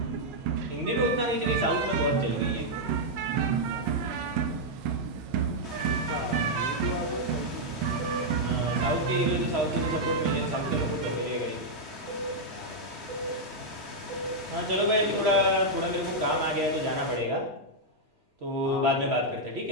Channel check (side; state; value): right; late; 3.2 ms